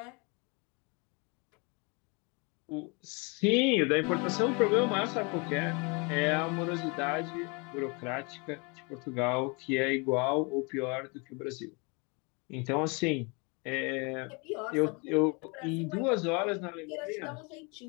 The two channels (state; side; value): quieter; right; 31.1 dB